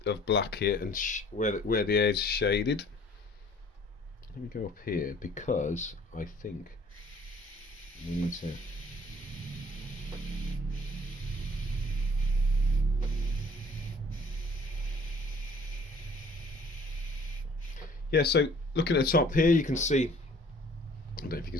of black here, and where the edge shaded. Let me go up here because I think we need to. Yeah, so looking at the top here, you can see, I don't know if you can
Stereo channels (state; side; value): normal; both; correlation 0.54